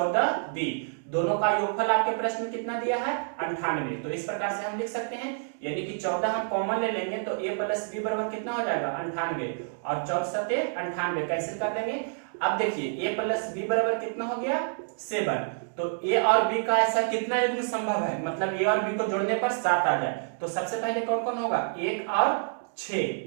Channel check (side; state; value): left; silent; digital silence